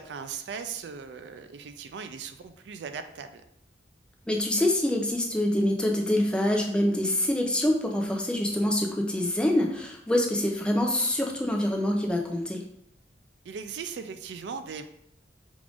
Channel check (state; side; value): normal; both; correlation 0.68